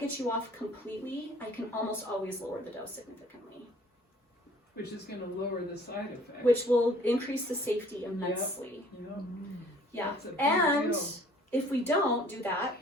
get you off completely, I can almost always lower the dose significantly. Which is going to lower the side effects. Which will increase the safety immensely. Yep. Yeah. That's a big And deal. if we don't do that,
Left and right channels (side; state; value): both; normal; correlation 0.54